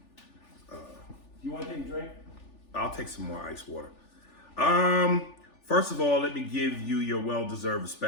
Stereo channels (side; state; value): right; late; 3.4 ms